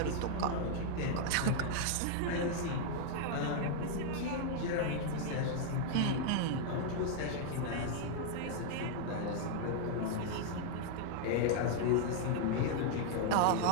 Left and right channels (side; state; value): both; different; correlation 0.00